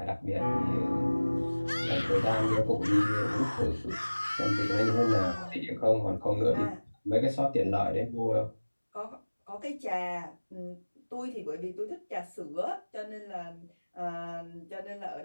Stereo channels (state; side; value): inverted; both; correlation -1.00